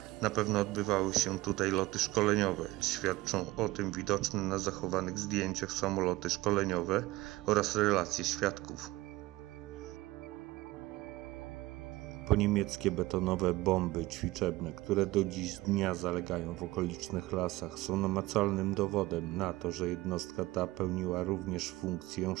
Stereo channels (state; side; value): quieter; left; 19.0 dB